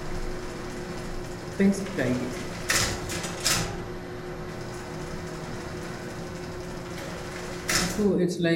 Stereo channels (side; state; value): both; identical; correlation 1.00